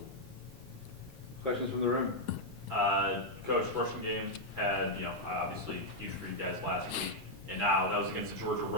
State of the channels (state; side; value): normal; both; correlation -0.02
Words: Questions from the room? Coach, rushing game had, obviously huge for you guys last week. And now that was against the Georgia